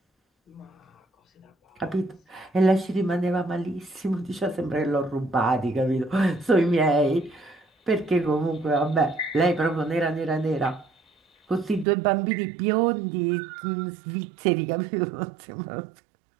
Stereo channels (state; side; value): drops out; left; at 11.9 s